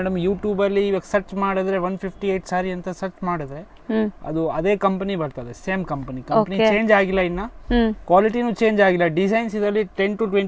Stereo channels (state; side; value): identical; both; correlation 1.00